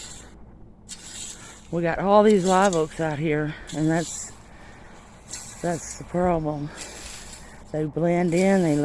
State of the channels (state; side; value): identical; both; correlation 1.00